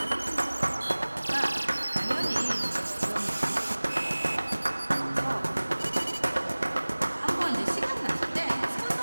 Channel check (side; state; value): both; inverted; correlation -1.00